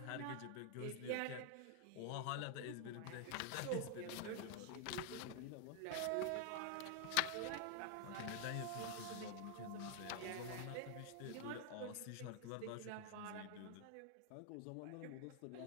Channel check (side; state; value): both; different; correlation 0.00